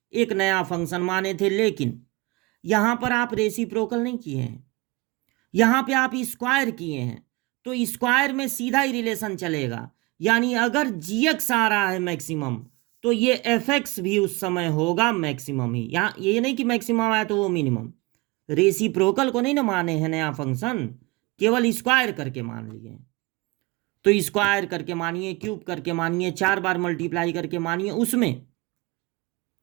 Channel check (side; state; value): left; quieter; 24.2 dB